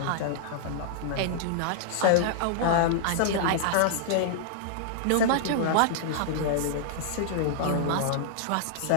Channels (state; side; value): different; both; correlation -0.01